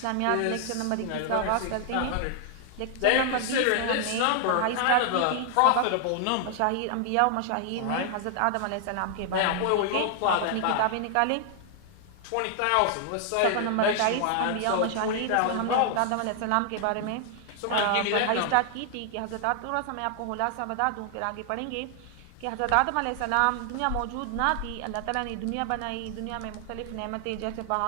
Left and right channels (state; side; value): different; both; correlation 0.00